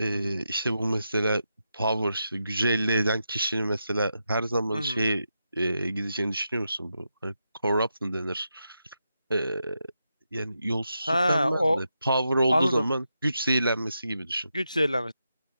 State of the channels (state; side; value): inverted; both; correlation -0.86